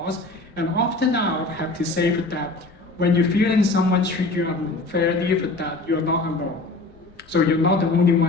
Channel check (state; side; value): quieter; right; 3.1 dB